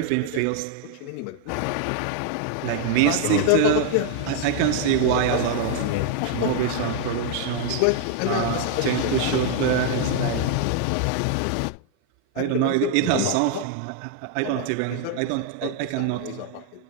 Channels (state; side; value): different; both; correlation 0.00